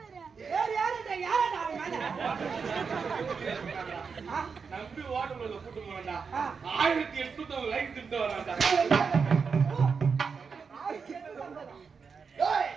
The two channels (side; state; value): left; quieter; 5.6 dB